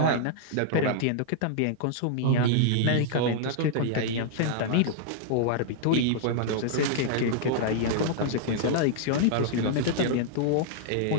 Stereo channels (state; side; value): different; both; correlation -0.01